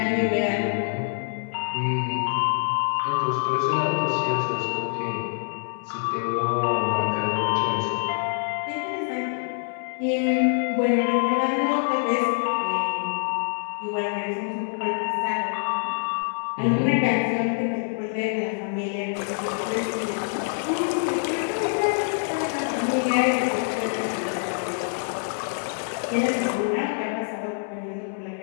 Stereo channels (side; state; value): right; silent; 61 dB below the other